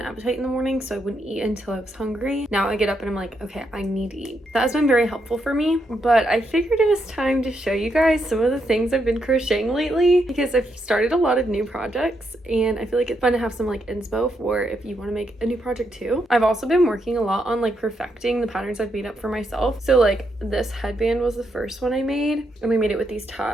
appetite in the morning, so I wouldn't eat until I was hungry. Now I get up and I'm like, okay, I need to eat. That has been very helpful for me. But I figured it was time to show you guys some of the things I've been crocheting lately, because I've started a lot of new projects and I feel like it's fun to have some like inspo for if you want to make a new project too. I've also been working a lot on like perfecting the patterns I've made up for myself. So like this headband was the first one I made, and we made it with these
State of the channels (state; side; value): normal; both; correlation 0.80